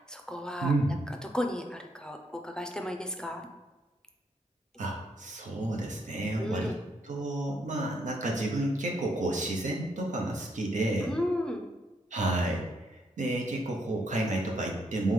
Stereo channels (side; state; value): both; normal; correlation 0.74